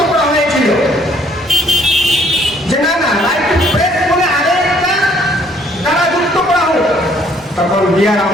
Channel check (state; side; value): normal; both; correlation 0.64